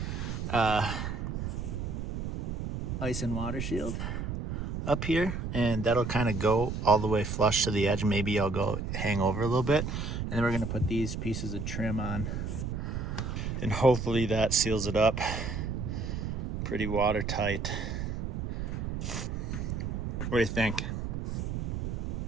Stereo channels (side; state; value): right; noise; rumble, 3 dB below the sound